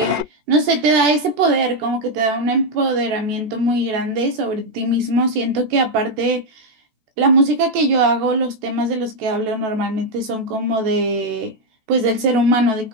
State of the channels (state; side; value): late; left; 14 ms